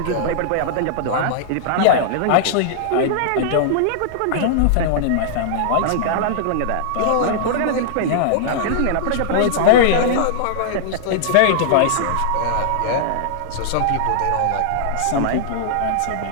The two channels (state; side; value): different; both; correlation -0.01